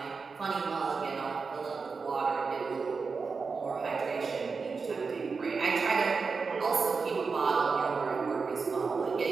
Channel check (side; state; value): left; quieter; 4.8 dB